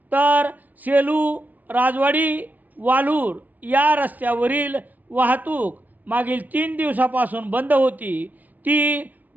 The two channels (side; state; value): left; late; 0.076 ms